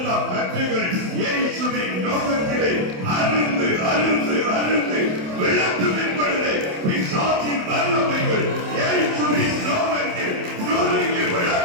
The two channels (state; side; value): late; left; 27 ms